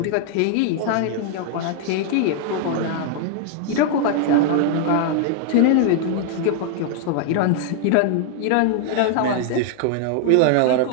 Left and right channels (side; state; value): both; different; correlation 0.00